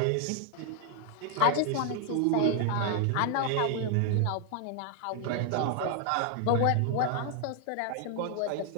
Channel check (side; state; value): both; different; correlation 0.00